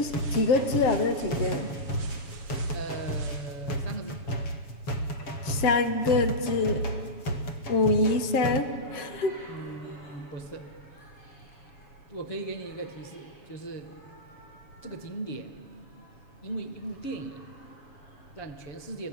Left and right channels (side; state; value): right; late; 7.1 ms